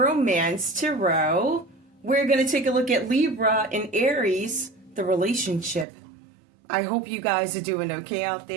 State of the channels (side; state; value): left; drops out; at 5.9 s